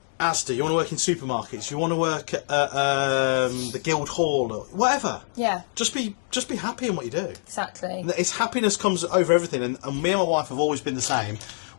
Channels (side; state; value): right; silent; digital silence